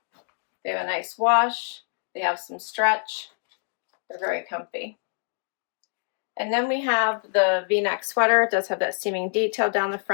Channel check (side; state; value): right; silent; digital silence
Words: They have a nice wash. They have some stretch. They're very comfy. And then we have the V-neck sweater. It does have that seaming detail down the